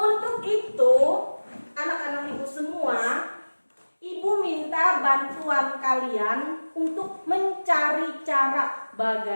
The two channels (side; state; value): both; inverted; correlation -1.00